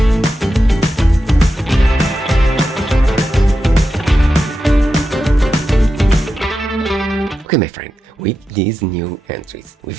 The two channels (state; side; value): normal; both; correlation 0.89